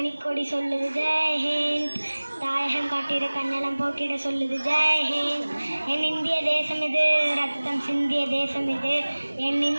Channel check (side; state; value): both; inverted; correlation -1.00